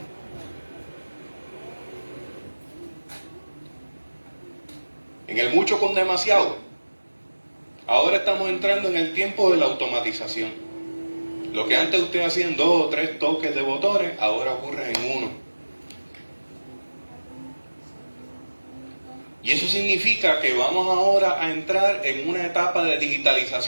En el mucho con demasiado. Ahora estamos entrando en el tiempo de la automatización. Lo que antes usted hacía en 2 o 3 toques de botones, ahora ocurre en uno. Y eso significa que vamos ahora a entrar en una etapa de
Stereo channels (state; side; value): inverted; both; correlation -1.00